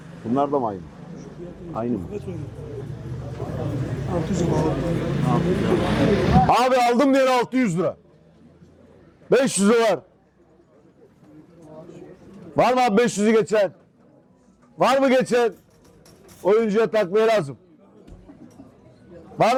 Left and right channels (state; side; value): identical; both; correlation 1.00